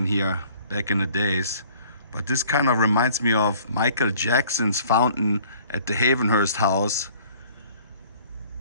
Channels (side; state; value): both; inverted; correlation -0.53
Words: here back in the days. But this kind of reminds me of Michael Jackson's fountain at the Havenhurst house,